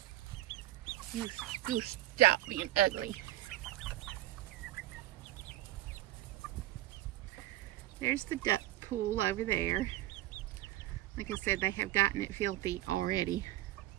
You stop being ugly. There's the duck pool over there. Like I said, they have gotten it filthy already.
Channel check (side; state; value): left; quieter; 15.6 dB